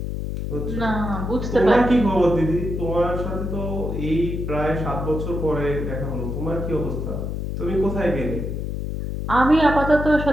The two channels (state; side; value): noise; left; hum, 4 dB below the sound